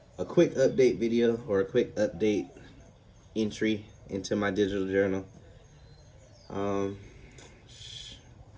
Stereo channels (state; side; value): identical; both; correlation 1.00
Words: quick update video or a quick update entry into my digital journal. Um,